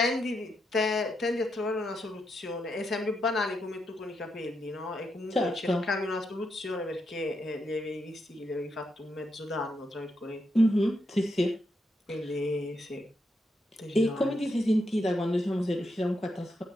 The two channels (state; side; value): normal; both; correlation 0.82